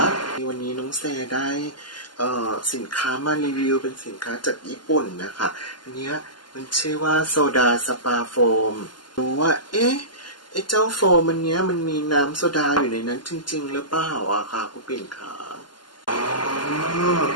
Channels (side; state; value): right; late; 0.71 ms